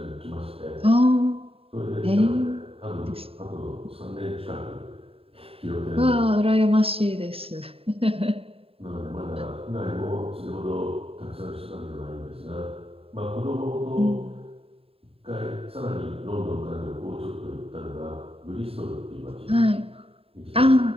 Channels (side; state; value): left; late; 0.27 ms